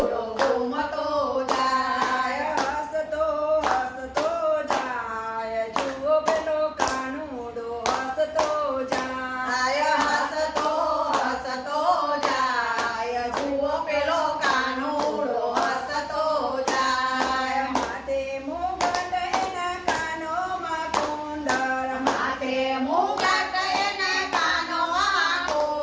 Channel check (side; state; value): both; identical; correlation 1.00